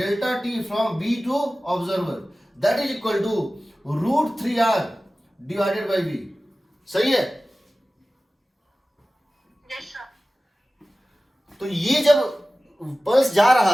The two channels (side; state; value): both; normal; correlation 0.96